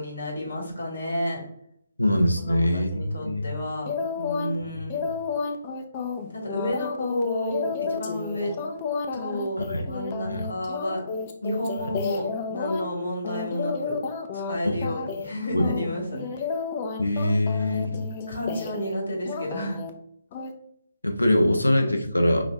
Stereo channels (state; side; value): inverted; both; correlation -0.80